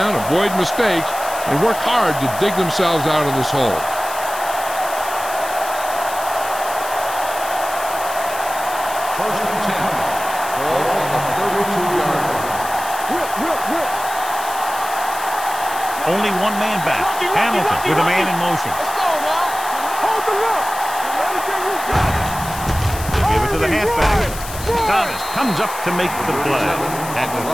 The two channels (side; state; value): left; noise; hiss, 11 dB below the sound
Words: avoid mistakes, and work hard to dig themselves out of this hole. First and 10. Ball on the 32-yard line. Only one man back. Hamilton with a man in motion. Let's go, man. Hold the look. Everything you got. They give it to the halfback. Thomas comes up to make the play at the